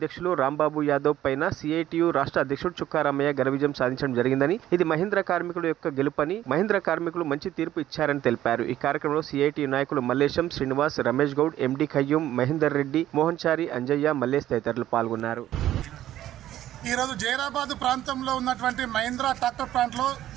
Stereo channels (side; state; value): left; quieter; 12.9 dB